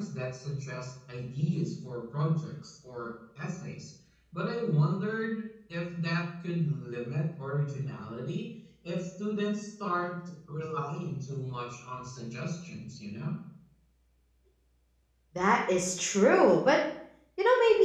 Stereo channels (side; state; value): both; identical; correlation 1.00